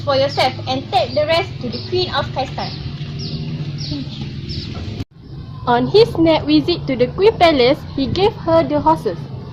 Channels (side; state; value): both; identical; correlation 1.00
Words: for yourself and take the rest to the Queen of Kaistan. On his next visit to the Queen Palace, he gave her the horses.